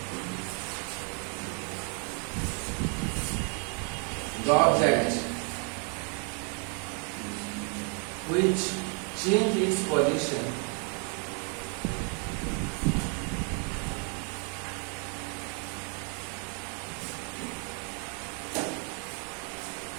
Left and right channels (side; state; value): left; quieter; 39.0 dB